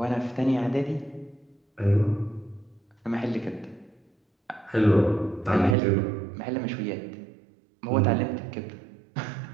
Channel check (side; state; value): left; drops out; at 5.8 s